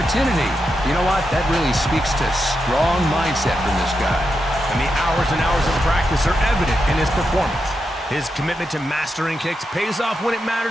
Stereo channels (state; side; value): normal; both; correlation 0.86